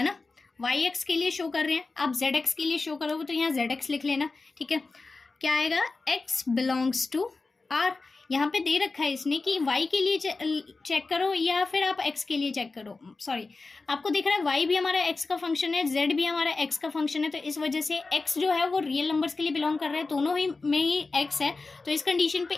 ना, वाई एक्स के लिए शो कर रहे हैं, आप जेड एक्स के लिए शो करोगे तो यहाँ जेड एक्स लिख लेना, ठीक है। क्या आएगा, एक्स बिलोंग्स टू आर, यहाँ पे दे रखा है इसने कि वाई के लिए चेक करो या फिर आप एक्स के लिए चेक करो, सॉरी आपको दिख रहा है वाई भी हमारा एक्स का फंक्शन है, जेड भी हमारा एक्स का फंक्शन है, तो इस वजह से एक्स जो है वो रियल नंबर्स के लिए बिलोंग कर रहा है, दोनों ही में ही एक्स है। तो इस कंडीशन पे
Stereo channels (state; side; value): quieter; right; 3.8 dB